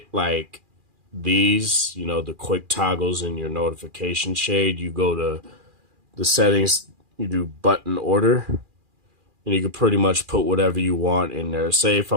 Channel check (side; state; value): left; late; 2.4 ms